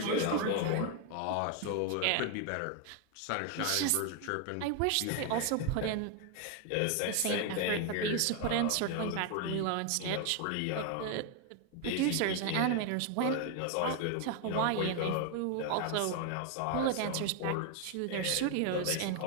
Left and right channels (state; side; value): different; both; correlation 0.01